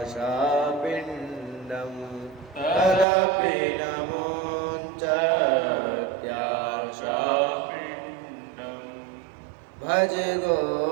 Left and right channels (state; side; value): drops out; left; at 3.1 s